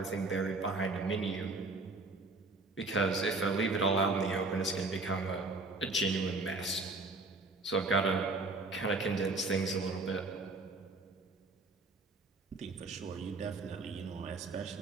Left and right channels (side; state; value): left; quieter; 3.4 dB